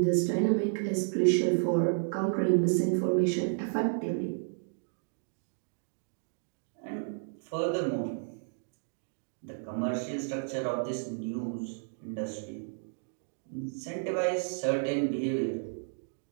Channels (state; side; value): silent; left; digital silence